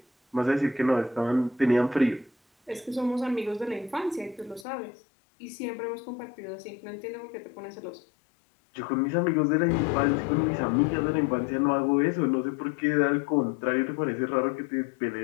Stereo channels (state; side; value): drops out; right; at 4.7 s